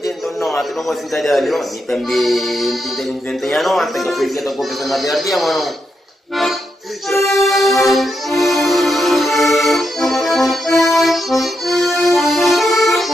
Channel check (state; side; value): normal; both; correlation 0.83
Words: não, tu não vai sentar ali, não, e também tem não, até que foi que eu tô começando a ver aqui, mano.